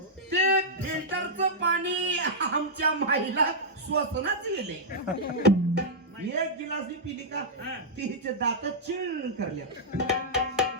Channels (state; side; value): normal; both; correlation -0.09